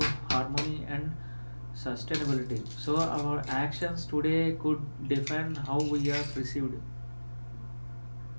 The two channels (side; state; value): both; inverted; correlation -1.00